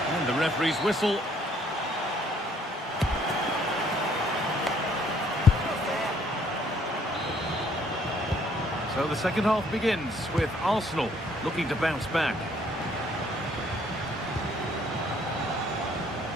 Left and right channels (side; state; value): both; normal; correlation 0.64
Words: The referee's whistle. So the second half begins with Arsenal looking to bounce back.